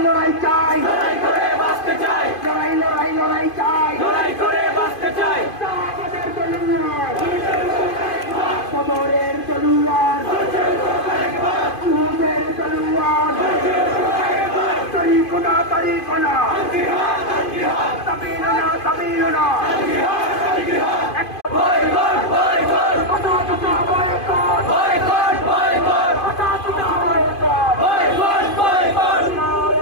লড়াই চাই, লড়াই করে বাঁচতে চাই, লড়াই লড়াই লড়াই চাই। লড়াই করে বাঁচতে চাই। আমাদের তলোয়ার, কবরের তলোয়ার, উহুদের তলোয়ার, তরিকুনা তরিকুনা, তাবিলুনা তাবিলুনা, বয়কট বয়কট কথা কথা বয়কট, বয়কট বয়কট কথা কথা বয়কট। Boycott boycott.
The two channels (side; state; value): right; late; 2.5 ms